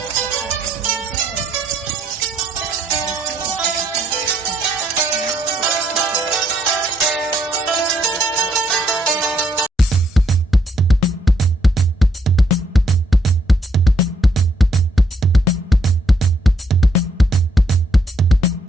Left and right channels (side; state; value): both; normal; correlation 0.72